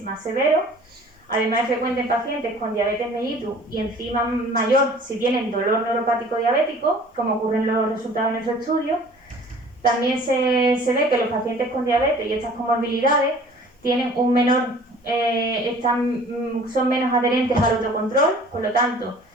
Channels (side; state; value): both; normal; correlation 0.49